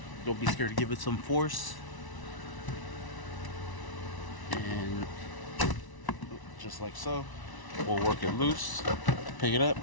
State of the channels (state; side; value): late; right; 1.0 ms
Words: Don't be scared to give it some force. And just like so, we'll work it loose, pick it up.